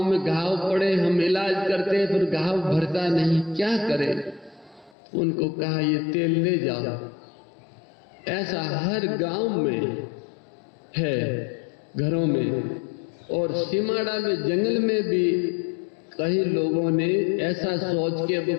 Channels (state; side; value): drops out; right; at 5.0 s